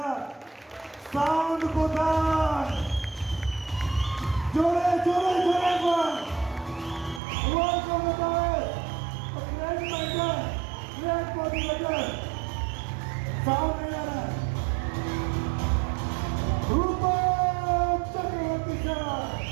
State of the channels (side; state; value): left; drops out; at 7.2 s